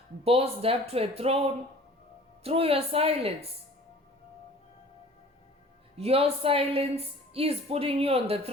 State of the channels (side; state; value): both; normal; correlation 0.47